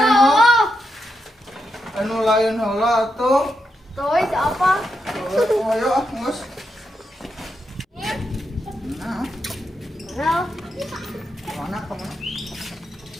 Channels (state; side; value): normal; both; correlation 0.84